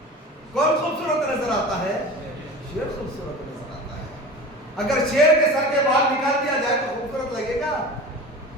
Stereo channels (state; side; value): normal; both; correlation 0.34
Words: کون خوبصورت نظر آتا ہے؟ شیر خوبصورت نظر آتا ہے. اگر شیر کے سر کے بال نکال دیا جائے تو خوبصورت لگے گا؟